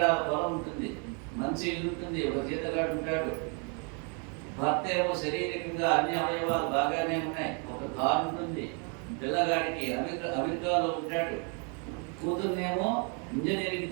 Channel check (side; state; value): left; quieter; 37.1 dB